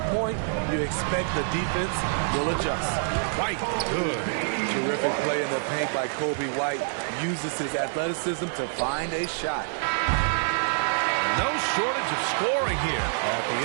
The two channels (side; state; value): left; silent; digital silence